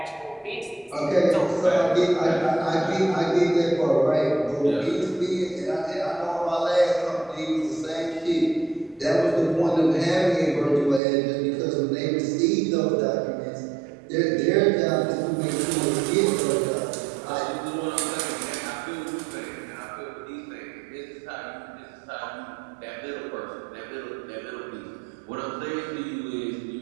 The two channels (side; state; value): left; drops out; at 11.0 s